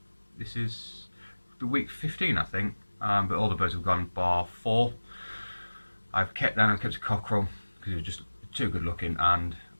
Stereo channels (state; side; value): inverted; both; correlation -1.00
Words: This is the week 15 I think, but all the birds have gone bar 4. I've kept a cockerel because he was just too good looking and